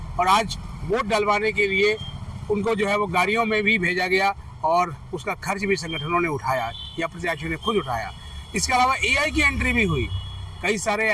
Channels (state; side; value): identical; both; correlation 1.00